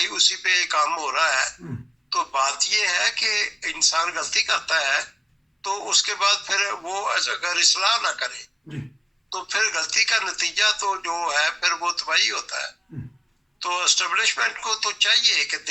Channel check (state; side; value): identical; both; correlation 1.00